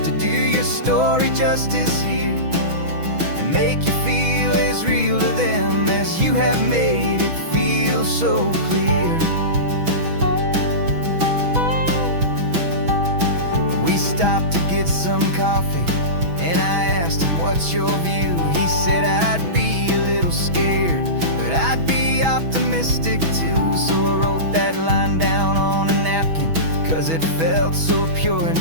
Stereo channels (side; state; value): left; late; 6.1 ms